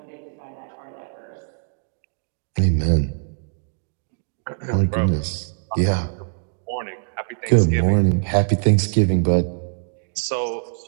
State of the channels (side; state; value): left; silent; digital silence